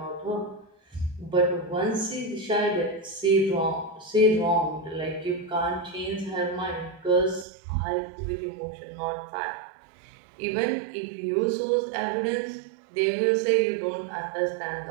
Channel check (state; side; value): drops out; left; at 7.5 s